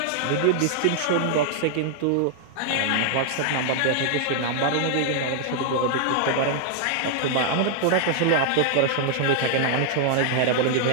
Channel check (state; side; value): different; both; correlation 0.00